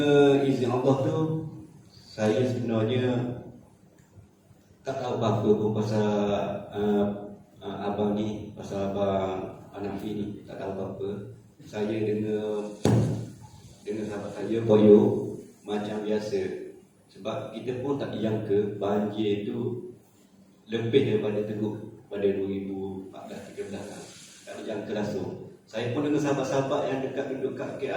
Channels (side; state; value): both; identical; correlation 1.00